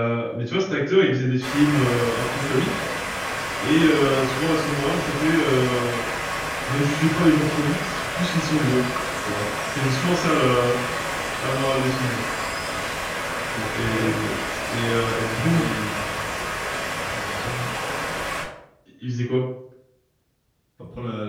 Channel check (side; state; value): both; identical; correlation 1.00